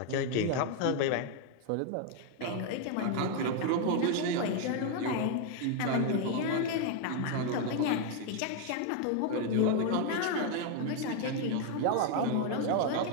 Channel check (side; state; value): both; different; correlation 0.01